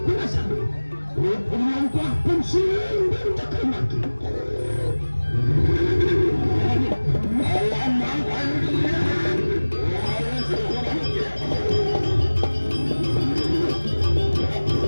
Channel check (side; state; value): both; inverted; correlation -1.00